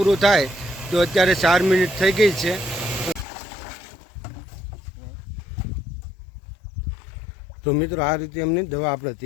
થાય તો અત્યારે 4 મિનિટ થઈ ગઈ છે. તો મિત્રો આ રીતે એમની દવા આપણે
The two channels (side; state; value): right; drops out; at 3.2 s